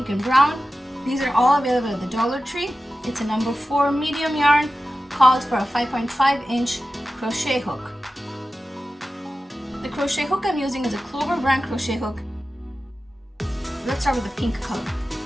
and brown. These are all available at the Dollar Tree. It's a number 4 medium yarn, called for a 5.5-inch crochet hook. The crochet hook I'm using is a Clover brand crochet hook. Let's start with the pink color.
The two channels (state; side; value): normal; both; correlation 0.94